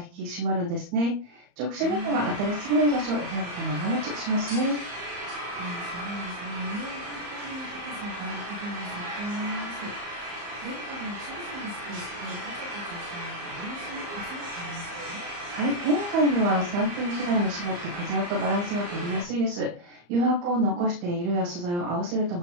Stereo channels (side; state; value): left; late; 34 ms